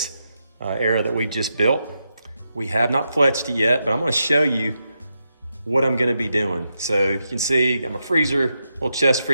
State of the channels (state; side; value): inverted; both; correlation -0.85